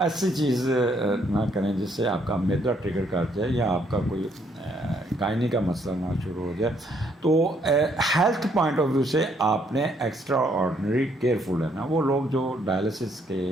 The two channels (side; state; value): both; normal; correlation 0.69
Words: چیز نہ کریں جس سے آپ کا میدا ٹریگر کر جائے یا آپ کا کوئی گائنی کا مسئلہ نہ شروع ہو جائے. تو ہیلتھ پوائنٹ آف ویو سے آپ نے ایکسٹرا آرڈنری کیئرفل ہے نا. وہ لوگ جو ڈائلسس کے